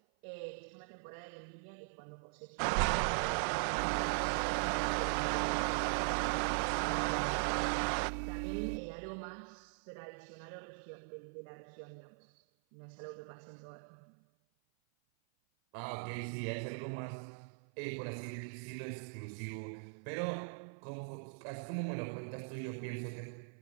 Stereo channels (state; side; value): silent; left; 51 dB below the other